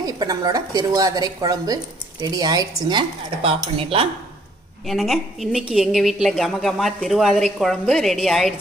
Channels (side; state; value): both; normal; correlation 0.63